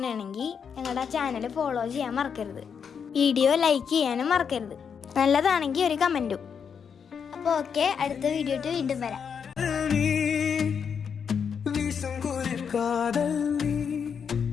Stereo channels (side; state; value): right; quieter; 6.9 dB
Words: ഞങ്ങളുടെ ആ ചാനൽ ഫോളോ ചെയ്യാൻ മറക്കരുത്. വീഡിയോ ലൈക്ക് ചെയ്യാനും മറക്കരുത്. നല്ലതാണെങ്കിൽ ഒരു കമൻറ്റും. അപ്പോൾ ഓക്കെ, അടുത്ത വീഡിയോ വീണ്ടും വരാം.